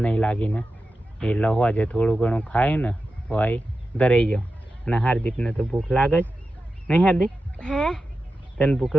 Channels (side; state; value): both; normal; correlation 0.92